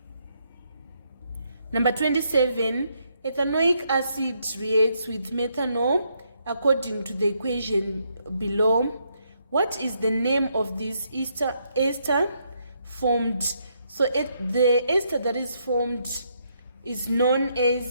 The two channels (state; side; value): inverted; both; correlation -0.75